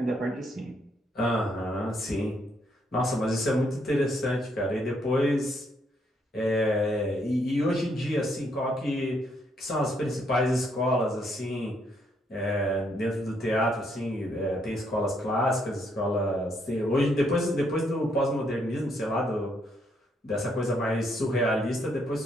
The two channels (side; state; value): both; normal; correlation 0.73